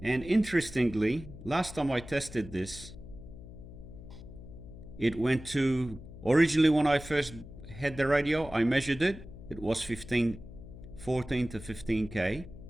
and interestingly, last time I tested this, it went to, originally when I first had the radio, I measured it, it was 14 to 15k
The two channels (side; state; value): left; noise; hum, 15 dB below the sound